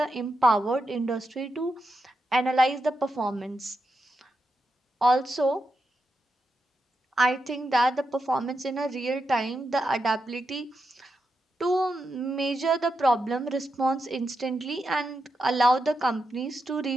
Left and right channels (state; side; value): normal; both; correlation 0.86